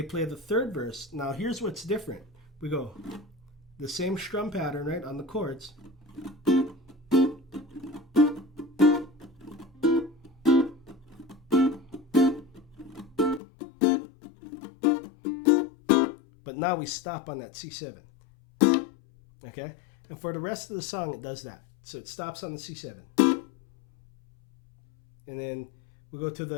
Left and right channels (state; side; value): drops out; right; at 13.4 s